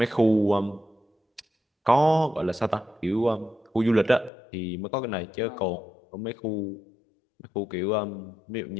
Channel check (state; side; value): drops out; right; at 4.3 s